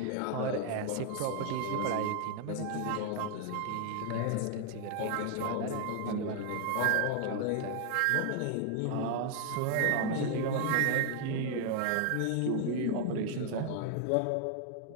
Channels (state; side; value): different; both; correlation 0.00